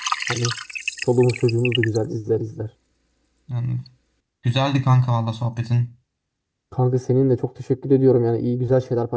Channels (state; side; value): identical; both; correlation 1.00